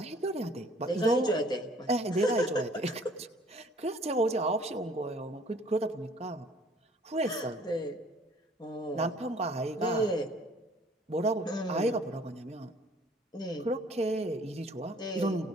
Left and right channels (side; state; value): both; normal; correlation 0.56